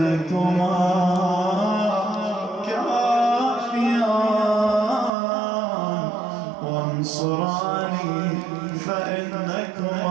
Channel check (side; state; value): left; drops out; at 5.1 s